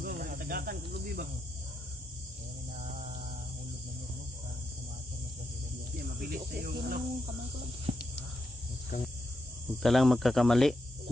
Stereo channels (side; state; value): both; normal; correlation 0.83